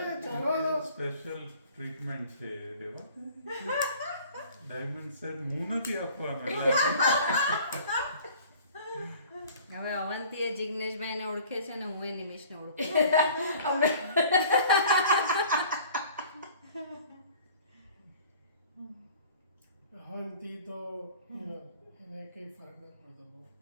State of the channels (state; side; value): inverted; both; correlation -0.49